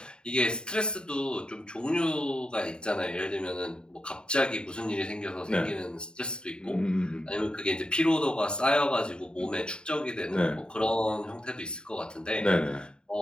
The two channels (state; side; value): late; right; 0.049 ms